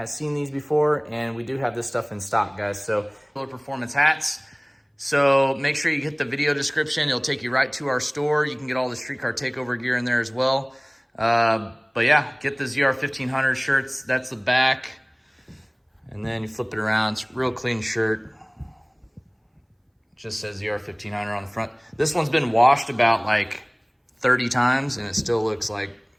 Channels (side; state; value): both; identical; correlation 1.00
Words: seen these before, and we do have this stuff in stock, guys. So performance hats. So make sure you hit the video description. It'll take you right to our store. You can get all the streetcar takeover gear in there as well. But yeah, get the ZR1500 shirts. That's the back. And then you flip it around. It's a real clean shirt. Just says ZR1500 on the front. This one's been washed about like 30 times and it still looks like